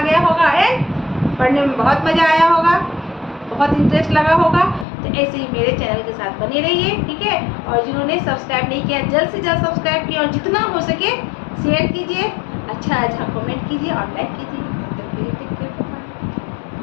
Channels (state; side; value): drops out; right; at 4.9 s